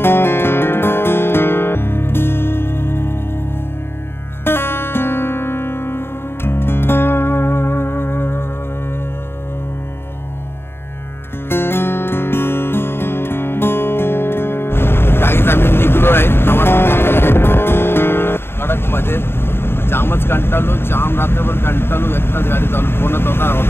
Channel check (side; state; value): right; late; 0.11 ms